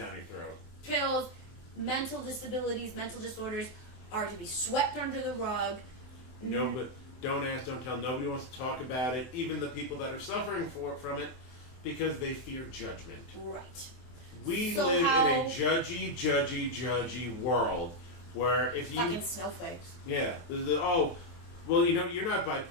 your throat. Pills, mental disabilities, mental disorders are to be swept under the rug. No, but don't ask, don't tell. Nobody wants to talk about it. Even the people that are suffering from it, because they fear judgment. Right. We live in a judgy world where if you fucking snowflakes. Yeah. You're not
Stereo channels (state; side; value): late; right; 23 ms